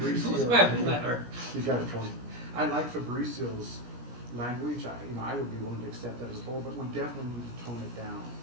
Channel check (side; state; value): left; late; 17 ms